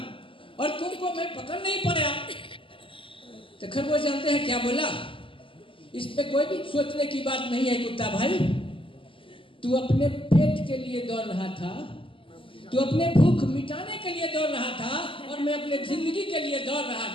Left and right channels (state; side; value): late; right; 0.25 ms